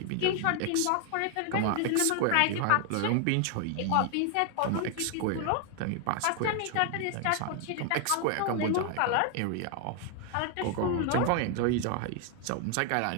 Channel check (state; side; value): different; both; correlation 0.00